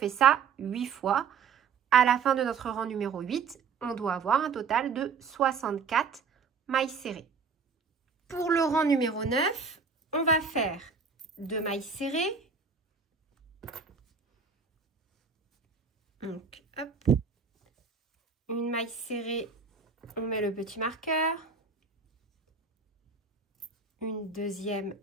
ça 8 fois. À la fin de notre rang numéro 8, on doit avoir un total de 64 mailles serrées. Pour le rang numéro 9, on va faire 2 mailles serrées. Donc, hop. Une maille serrée, on met le petit marqueur. Une deuxième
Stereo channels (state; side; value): quieter; left; 5.5 dB